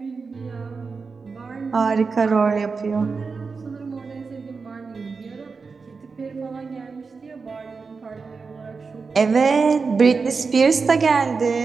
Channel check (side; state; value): left; quieter; 4.8 dB